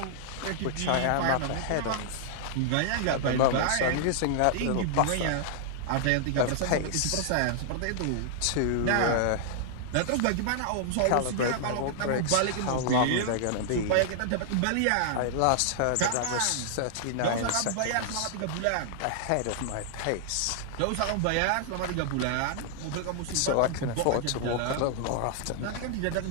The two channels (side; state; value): both; different; correlation -0.01